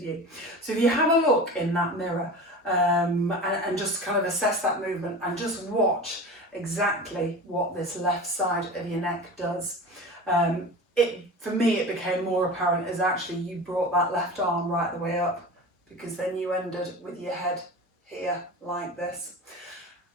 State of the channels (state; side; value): normal; both; correlation 0.33